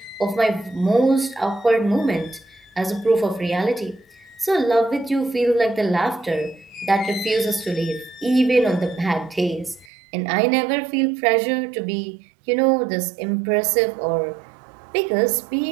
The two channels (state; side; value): drops out; left; at 9.9 s